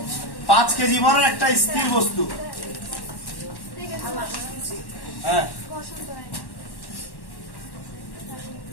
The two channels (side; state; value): right; late; 1.1 ms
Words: 5 কেজি ভরের একটা স্থির বস্তু। হ্যাঁ,